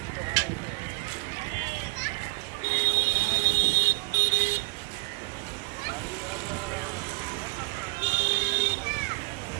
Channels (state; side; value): quieter; left; 28.2 dB